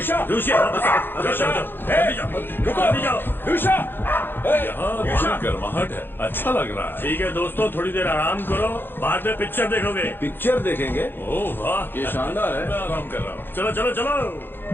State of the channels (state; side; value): late; right; 0.10 ms